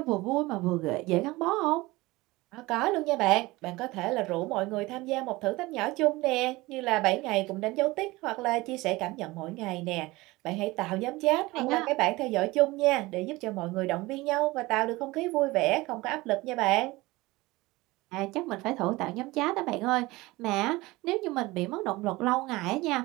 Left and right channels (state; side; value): quieter; left; 20.8 dB